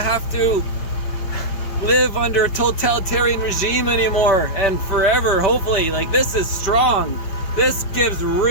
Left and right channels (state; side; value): late; right; 5.4 ms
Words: to live under a totalitarian regime anymore and forever, hopefully. Like, this is strong. This gives